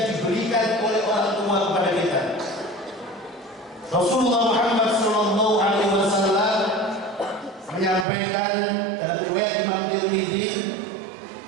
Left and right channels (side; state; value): left; drops out; at 8.1 s